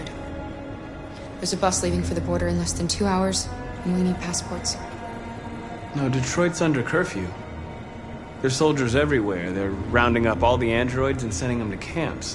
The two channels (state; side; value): identical; both; correlation 1.00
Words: There's a bus leaving for the border in less than 2 hours, and we need passports. No, Detroit's under curfew. There's soldiers everywhere. They're rounding up all the androids and sending them to